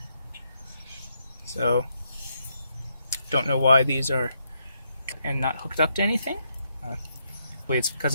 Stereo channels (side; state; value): both; inverted; correlation -0.78